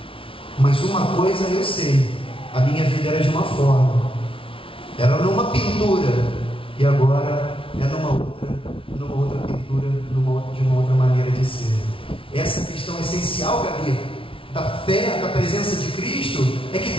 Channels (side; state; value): right; late; 0.26 ms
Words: mas uma coisa eu sei: a minha vida era de uma forma, era numa pintura, e agora é numa outra pintura, de uma outra maneira de ser. Essa questão essencial, Gabi, da fé, da presença de Cristo, é que